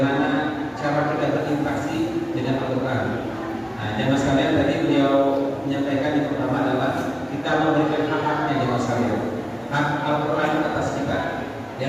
cara kita berinteraksi dengan Al-Quran. Nah, jamaah sekalian, tadi beliau menyampaikan yang pertama adalah kita memberikan hak-haknya jamaah sekalian. Hak Al-Quran atas kita. Di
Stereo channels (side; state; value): both; identical; correlation 1.00